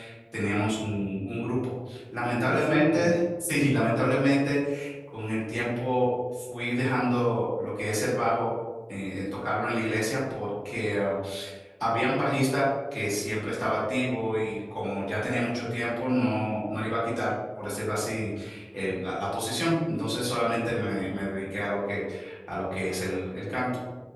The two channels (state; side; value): identical; both; correlation 1.00